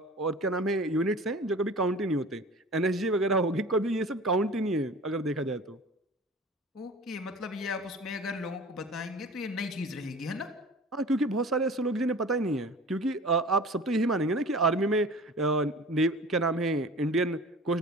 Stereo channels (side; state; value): both; normal; correlation 0.41